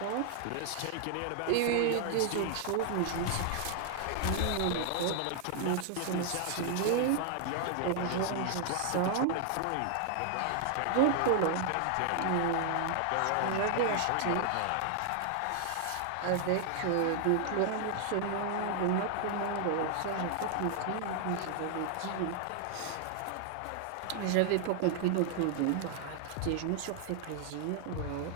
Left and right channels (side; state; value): both; different; correlation 0.00